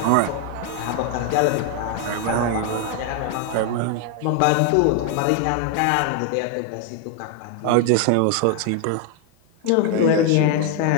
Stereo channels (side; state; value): both; different; correlation 0.00